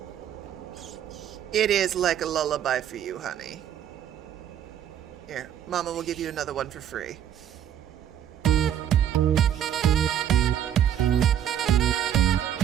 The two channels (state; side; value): quieter; left; 10.2 dB